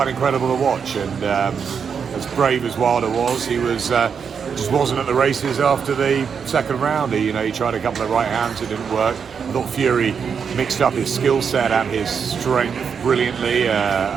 incredible to watch. And as brave as Wilder was, he was just wasn't at the races after the second round. He tried a couple of right hands, it didn't work. I thought Fury mixed up his skill set and his strength brilliantly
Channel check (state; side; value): quieter; left; 6.6 dB